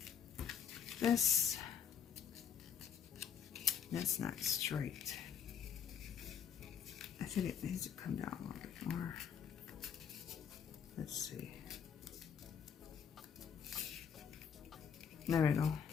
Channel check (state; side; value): quieter; right; 7.7 dB